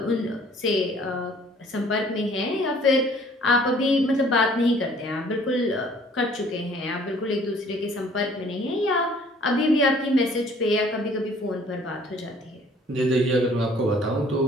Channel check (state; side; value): normal; both; correlation 0.56